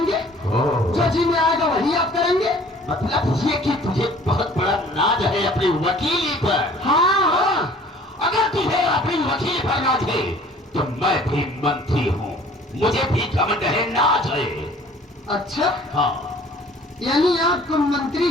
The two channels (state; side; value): normal; both; correlation 0.52